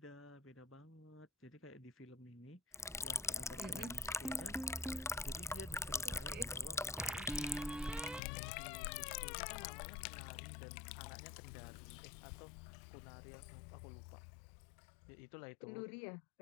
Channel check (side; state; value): right; drops out; at 8.2 s